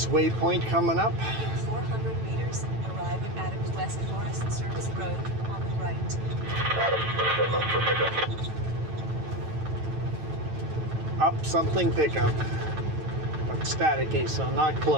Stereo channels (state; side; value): late; left; 9.0 ms